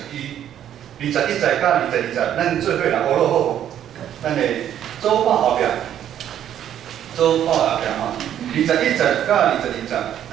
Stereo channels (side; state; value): left; quieter; 10.5 dB